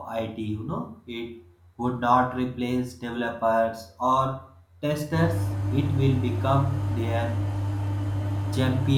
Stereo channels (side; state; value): both; identical; correlation 1.00